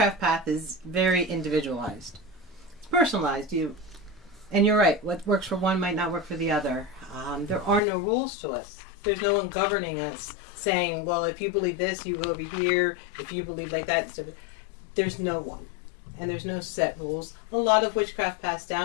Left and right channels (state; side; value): drops out; right; at 7.8 s